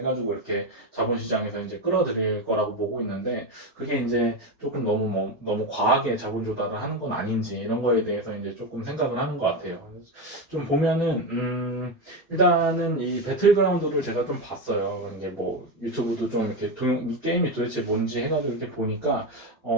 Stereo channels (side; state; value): both; normal; correlation 0.14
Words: 이렇게 자본시장에서 이제 끌어들일 거라고 보고 있는데 그게 이제 조금 너무 과하게 자본 조달을 하는 건 아닌지 이런 거에 대해서 이제 조금 생각을 하는 것 같아요. 좀 보면은 일단은 이 배틀그라운드를 제가 좀 봤어요. 이게 뭐 유튜브도 좀 이렇게 이 게임이 도대체 뭔지 해가지고 이렇게 보니까